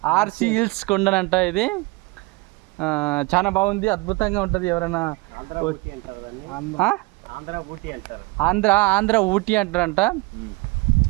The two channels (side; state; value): left; quieter; 23.9 dB